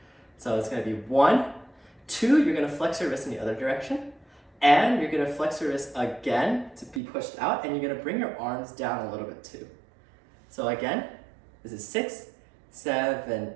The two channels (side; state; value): left; drops out; at 7.0 s